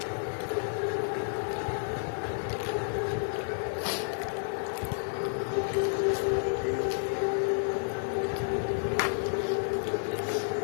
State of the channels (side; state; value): right; silent; digital silence